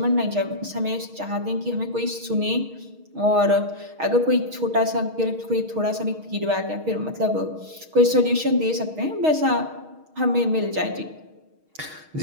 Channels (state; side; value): late; left; 6.4 ms